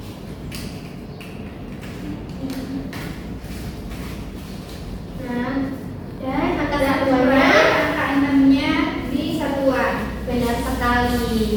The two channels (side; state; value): both; identical; correlation 1.00